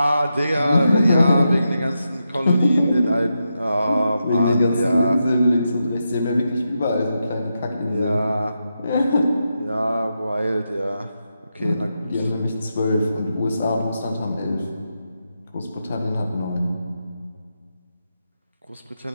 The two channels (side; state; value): both; inverted; correlation -0.86